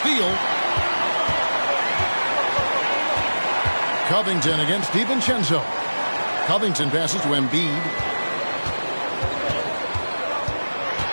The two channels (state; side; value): inverted; both; correlation -1.00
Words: Covington against DiVincenzo. Covington passes to Embiid.